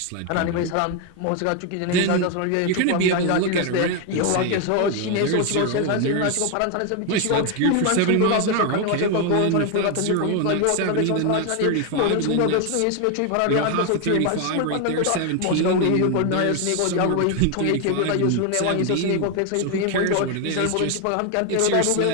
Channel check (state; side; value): different; both; correlation 0.01